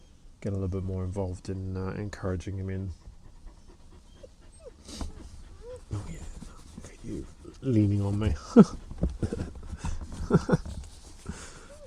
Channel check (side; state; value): both; identical; correlation 1.00